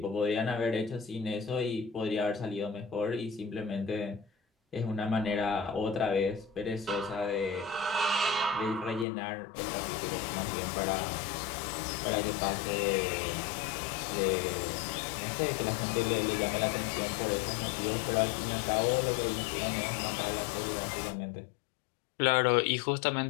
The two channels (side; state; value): right; drops out; at 9.1 s